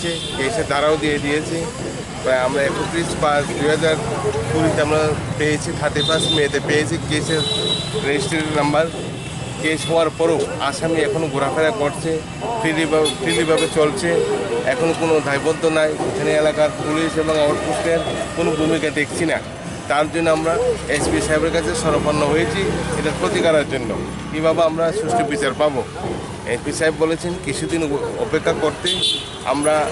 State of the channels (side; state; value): both; identical; correlation 1.00